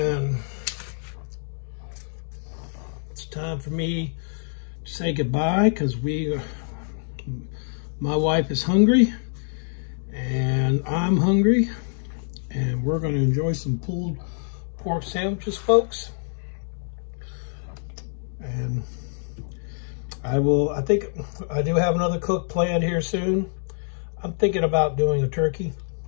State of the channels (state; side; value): silent; right; digital silence